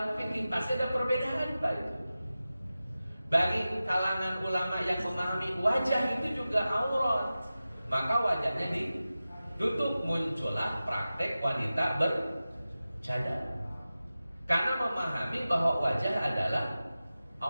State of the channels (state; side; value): inverted; both; correlation -0.95